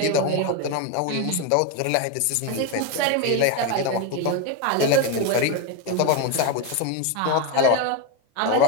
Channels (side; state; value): both; different; correlation 0.02